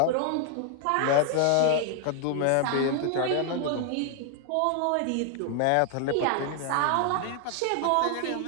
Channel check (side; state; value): both; different; correlation 0.00